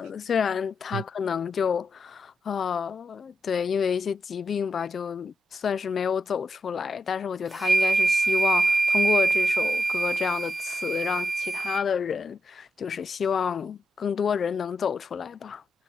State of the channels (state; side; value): normal; both; correlation 0.86